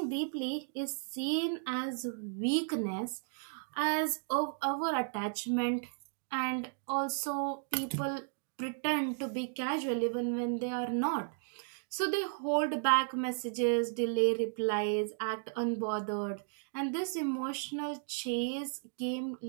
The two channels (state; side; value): silent; left; digital silence